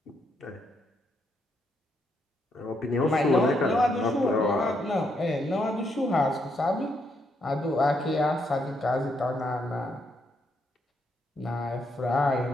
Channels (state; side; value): normal; both; correlation 0.77